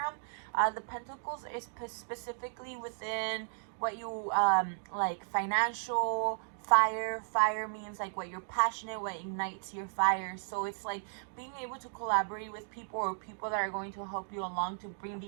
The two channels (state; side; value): silent; left; digital silence